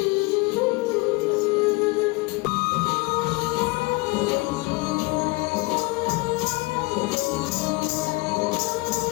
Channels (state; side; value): quieter; right; 24.5 dB